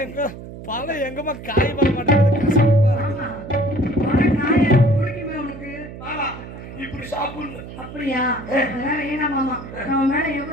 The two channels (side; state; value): right; noise; hum, 13 dB below the sound